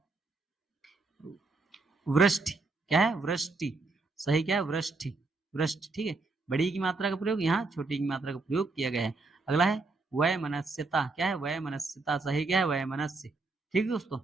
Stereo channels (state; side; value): quieter; left; 3.7 dB